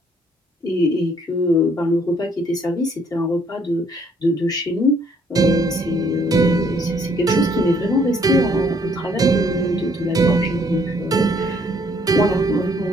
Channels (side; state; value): both; normal; correlation 0.65